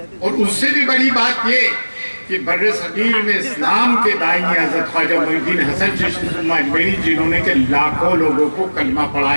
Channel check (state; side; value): inverted; both; correlation -1.00